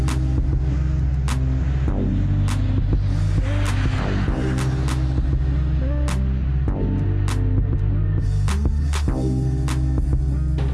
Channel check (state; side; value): identical; both; correlation 1.00